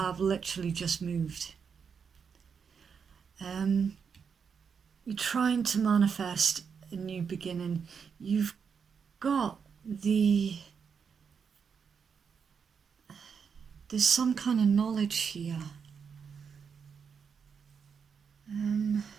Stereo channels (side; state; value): left; quieter; 6.4 dB